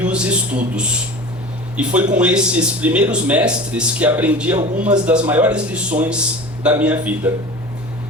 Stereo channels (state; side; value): normal; both; correlation 0.36